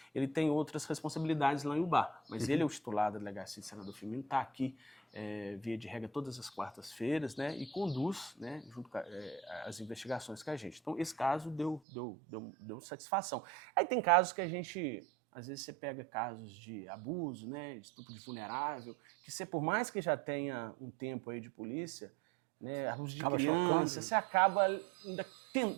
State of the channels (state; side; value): drops out; left; at 11.8 s